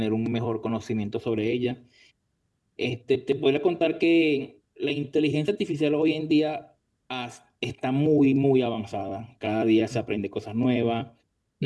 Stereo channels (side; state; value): both; identical; correlation 1.00